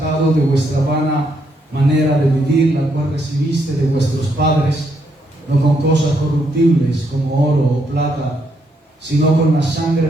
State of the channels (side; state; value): both; normal; correlation 0.76